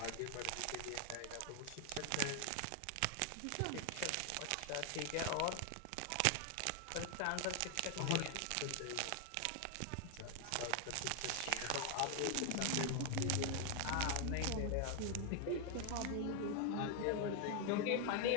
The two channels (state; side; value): different; both; correlation 0.00